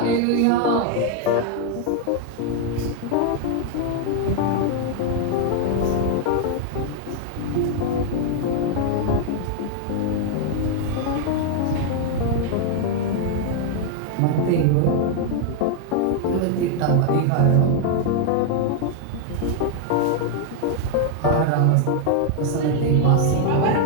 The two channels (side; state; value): both; different; correlation 0.00